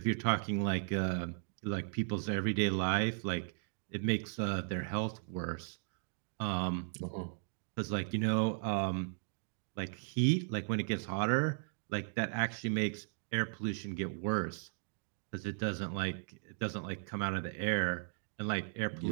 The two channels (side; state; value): left; silent; digital silence